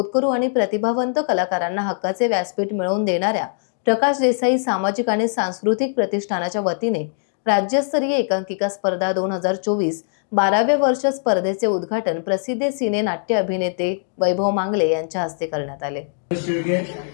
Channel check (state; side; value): silent; right; digital silence